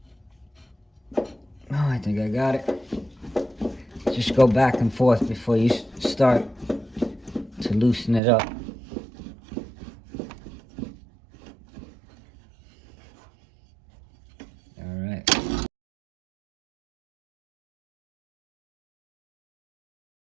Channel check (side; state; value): left; drops out; at 8.2 s